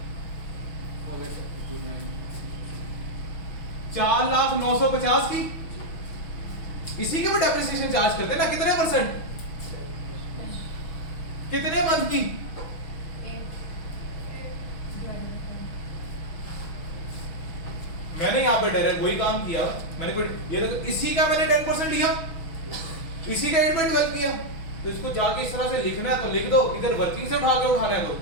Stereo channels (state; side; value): late; right; 6.2 ms